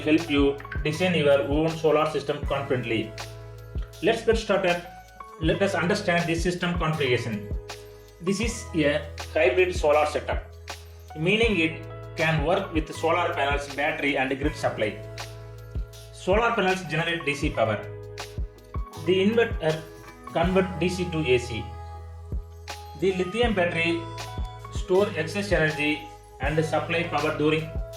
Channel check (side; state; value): both; identical; correlation 1.00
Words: help you design your own solar system confidently. Let's get started. Let us understand the system configuration. This is a hybrid solar setup, meaning it can work with solar panels, battery and grid supply. Solar panels generate DC power. The inverter converts DC to AC. The lithium battery store excess energy and supply power during